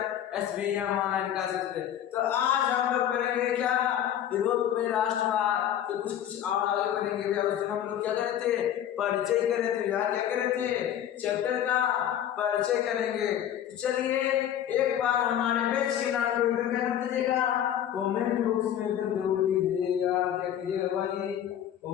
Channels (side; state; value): right; quieter; 10.5 dB